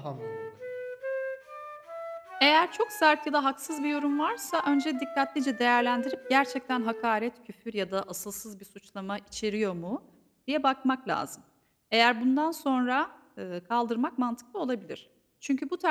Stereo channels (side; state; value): both; identical; correlation 1.00